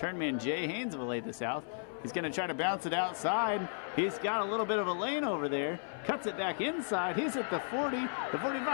man Jay Haynes of Olathe South. He's going to try to bounce it outside. He's got a little bit of a lane over there. Cuts it back inside. He's at the 40, the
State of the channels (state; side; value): silent; right; 55 dB below the other